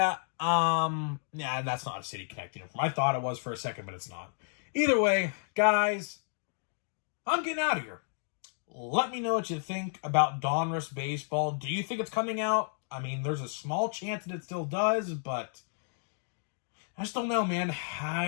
that's not a City Connect uniform. I thought it was for a second, but it's not. Either way, guys, I'm getting out of here. Let me know what you think about Donruss Baseball. Do you think it's coming out? I mean, there's a small chance that it still does, but I just don't know, man.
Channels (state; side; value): silent; right; digital silence